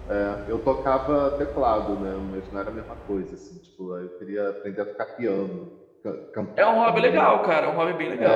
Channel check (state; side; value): identical; both; correlation 1.00